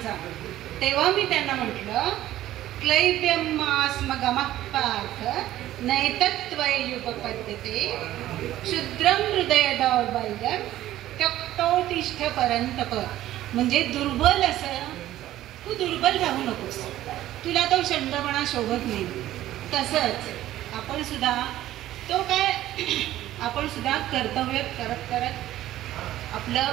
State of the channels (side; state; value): left; quieter; 14.0 dB